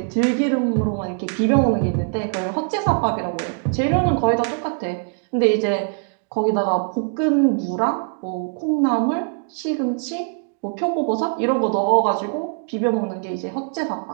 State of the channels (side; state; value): left; silent; 56 dB below the other